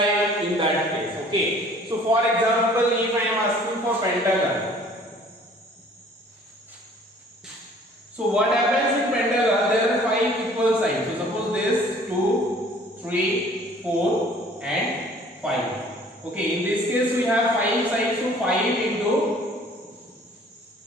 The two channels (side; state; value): both; normal; correlation 0.53